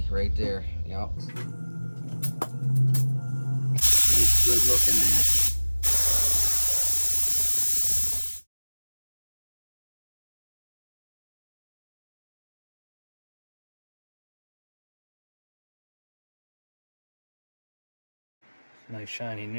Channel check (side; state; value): both; inverted; correlation -1.00